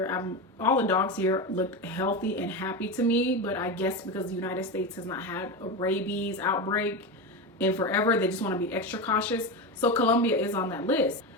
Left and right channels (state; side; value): normal; both; correlation 0.18